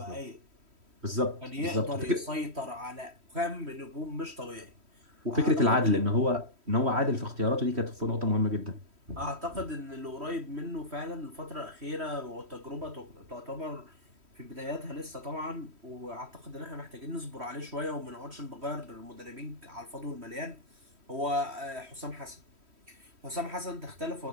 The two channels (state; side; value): late; left; 3.1 ms